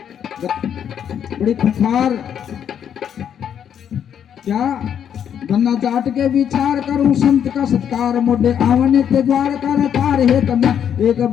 बड़ी खुखार क्या गन्ना चाट के विचार करूं संत का सत्कार मोडे आवने के द्वार कर तार हे तम एक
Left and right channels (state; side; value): quieter; right; 8.8 dB